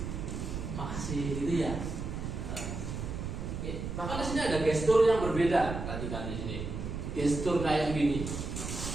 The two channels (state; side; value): noise; right; rumble, 5 dB below the sound